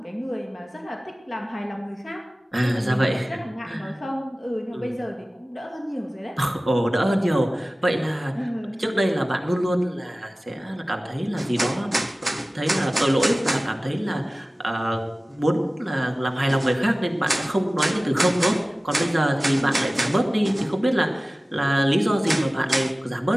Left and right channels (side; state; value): both; normal; correlation 0.97